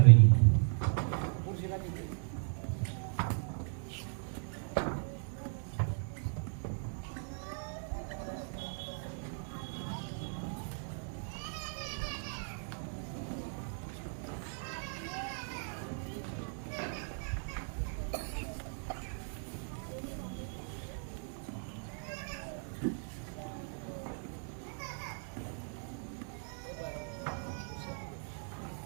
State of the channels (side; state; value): left; silent; 53 dB below the other